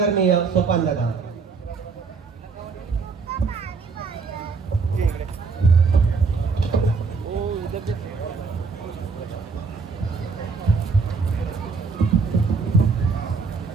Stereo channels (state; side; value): quieter; left; 4.8 dB